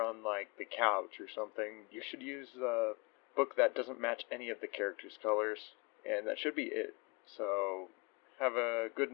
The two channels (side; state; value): right; quieter; 29.5 dB